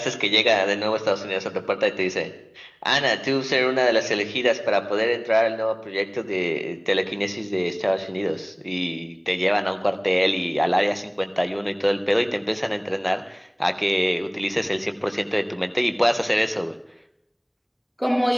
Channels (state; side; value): identical; both; correlation 1.00